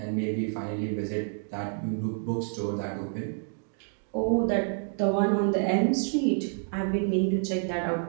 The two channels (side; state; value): left; silent; 58 dB below the other